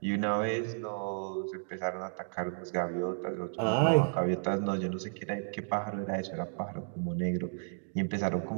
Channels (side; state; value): left; silent; digital silence